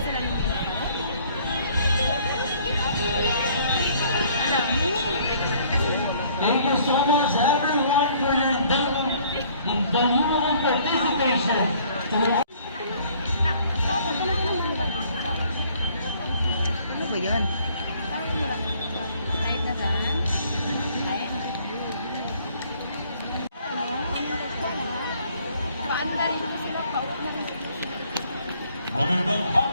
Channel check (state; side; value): inverted; both; correlation -0.59